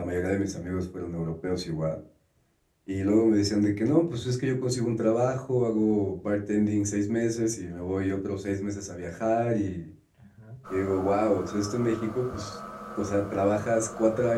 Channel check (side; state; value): both; identical; correlation 1.00